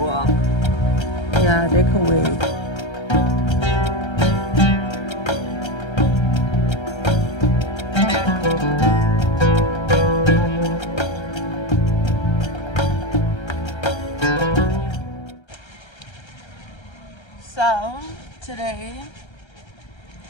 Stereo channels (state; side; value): late; right; 1.3 ms